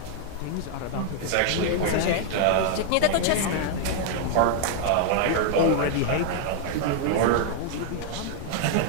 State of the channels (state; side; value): different; both; correlation 0.00